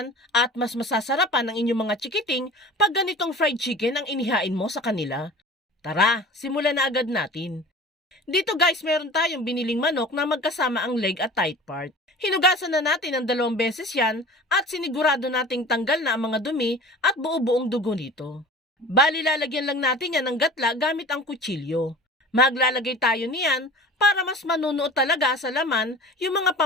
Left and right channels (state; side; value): normal; both; correlation 0.39